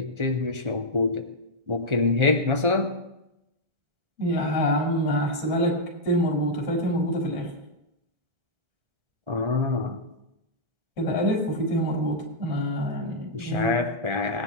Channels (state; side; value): late; left; 1.4 ms